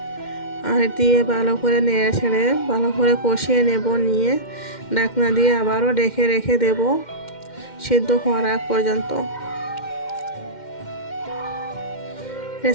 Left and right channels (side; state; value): right; late; 2.1 ms